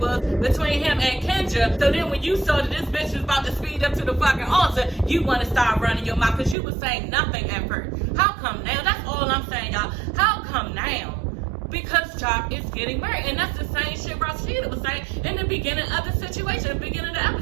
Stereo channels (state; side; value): drops out; left; at 6.6 s